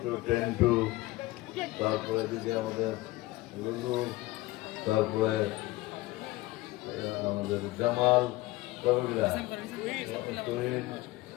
টেন্টু, তারপরে এদিকে আমাদের লুলু, তারপরে আমাদের জামাল,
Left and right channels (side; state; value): right; quieter; 19.1 dB